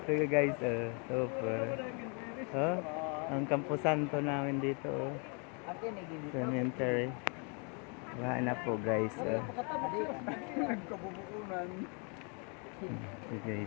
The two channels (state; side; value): quieter; right; 35.2 dB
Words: guys, super. Ang Campo Santo namin dito. Cemetery. Baha na po guys. Ito